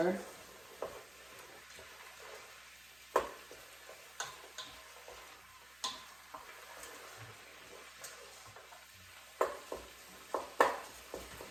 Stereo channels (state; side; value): noise; right; hum, 25 dB below the sound